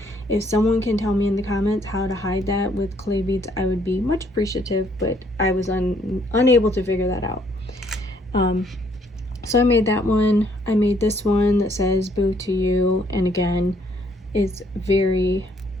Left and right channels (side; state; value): both; normal; correlation 0.66